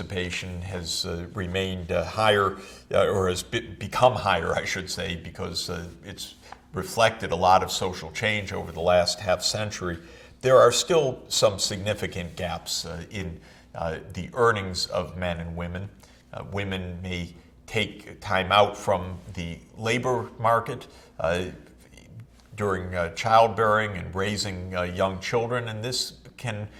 has remained higher, or has become higher, I should say, because it's reflected a lot of social change over the last half century, there are still some significant gaps in the earnings of men and women. Women may take time out from the labor market during childbearing and raising young children, and this can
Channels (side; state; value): both; identical; correlation 1.00